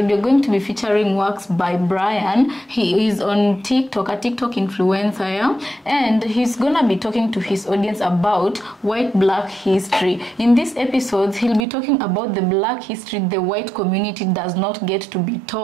you're going to be featuring works by Brian. He is on TikTok, a TikTok influencer, yeah? And he's gonna be talking to his audience about white black history. In these episodes, he'll be talking about the black history the white community does not get to be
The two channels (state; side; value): drops out; left; at 11.7 s